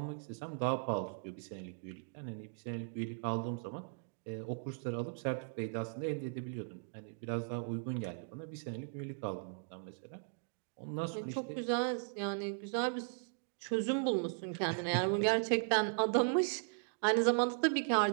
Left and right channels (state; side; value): silent; left; digital silence